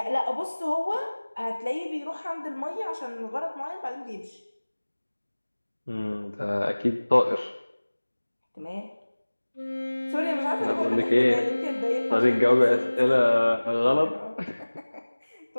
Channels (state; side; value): inverted; both; correlation -1.00